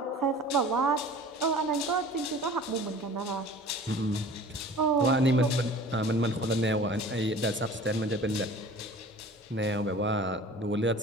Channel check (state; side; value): normal; both; correlation 0.43